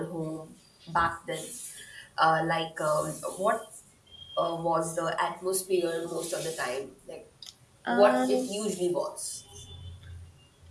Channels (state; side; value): identical; both; correlation 1.00